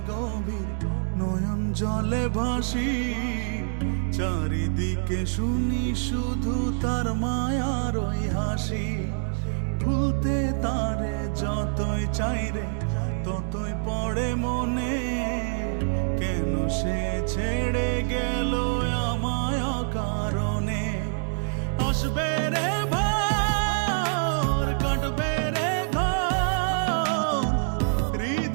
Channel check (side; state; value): left; silent; digital silence